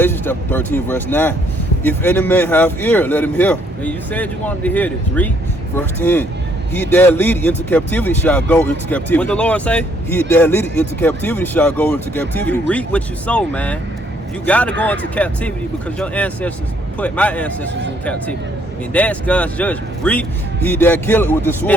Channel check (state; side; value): normal; both; correlation 0.67